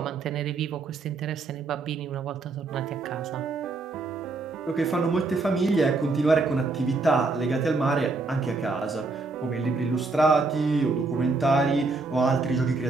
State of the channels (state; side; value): quieter; left; 3.7 dB